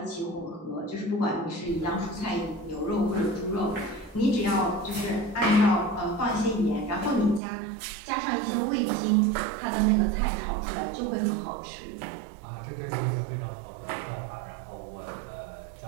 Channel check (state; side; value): drops out; left; at 7.4 s